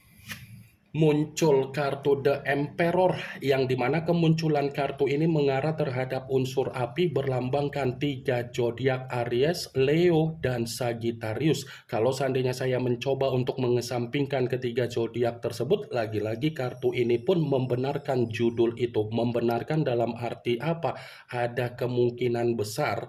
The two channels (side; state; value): both; identical; correlation 1.00